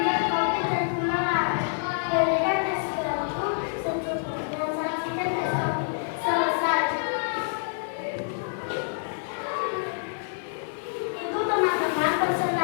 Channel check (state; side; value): silent; right; digital silence